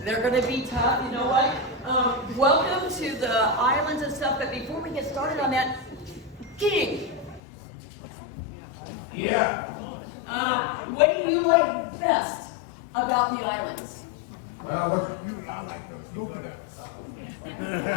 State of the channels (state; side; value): drops out; right; at 7.4 s